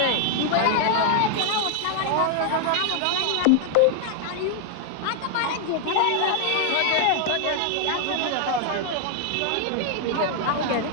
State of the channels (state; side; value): different; both; correlation 0.00